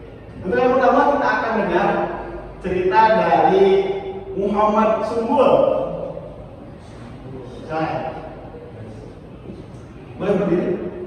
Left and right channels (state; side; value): identical; both; correlation 1.00